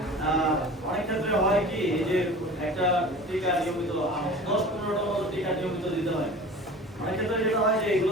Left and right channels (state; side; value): normal; both; correlation 0.39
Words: অনেক ক্ষেত্রে হয় কি এই যে একটা টিকা নিয়মিত 10-15টা মতো টিকা নিয়মিত দিতে হয়। অনেক ক্ষেত্রে যেটা হয় যে এগুলো